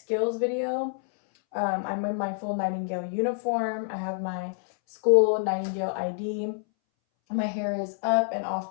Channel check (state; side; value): silent; right; 60 dB below the other